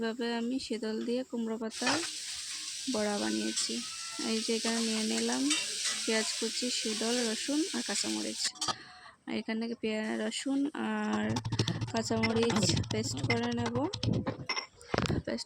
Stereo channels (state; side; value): identical; both; correlation 1.00